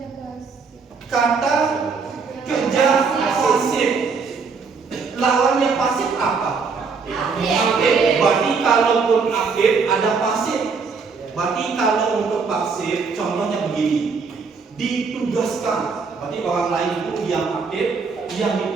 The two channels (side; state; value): left; quieter; 5.0 dB